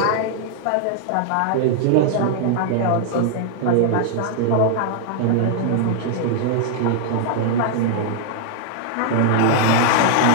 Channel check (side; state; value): both; different; correlation 0.00